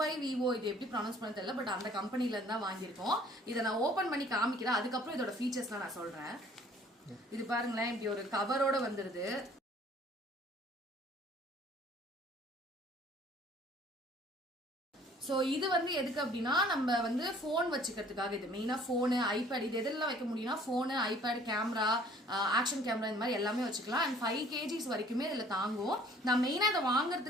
இது எப்படி ப்ரொனவுன்ஸ் பண்ண தெரியல, பட் அந்த கம்பெனில இருந்து தான் வாங்கியிருக்கோம். இதை நான் ஓபன் பண்ணி காமிக்கிறேன். அதுக்கப்புறம் இதோட ஃபீச்சர்ஸ்லாம் நான் சொல்றேன். இது பாருங்களேன், இப்படி ஒரு கவரோட வந்துருது. ஸோ இது வந்து எதுக்கு அப்படின்னா நம்ம வந்து ஃபோன் வச்சுக்கிறதுக்காக. இது மெயினாக ஃபோனு, ஐபேட், இது எதெல்லாம் வைக்க முடியும்னா phone, iPad, camera, action camera, இந்த மாதிரி எல்லாமே வச்சுக்கலாம். அண்ட் 5 kgs வரைக்குமே இதில் தாங்கும். நான் மெயினாக இதை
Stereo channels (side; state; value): both; normal; correlation 0.55